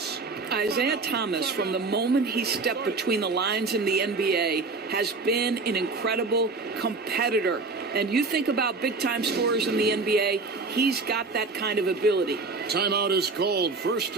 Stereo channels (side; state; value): left; quieter; 3.9 dB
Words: Isaiah Thomas, from the moment he stepped between the lines in the NBA, has been an incredible competitor. And you think about big-time scorers in the NBA, he's got that kind of ability. Timeout is called. First